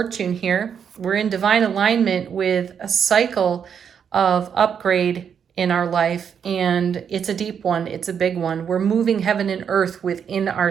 here. We're in divine alignment with a cycle of upgrade in our life, and it's a deep one. It's a big one. We're moving heaven and earth within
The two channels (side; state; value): left; quieter; 7.5 dB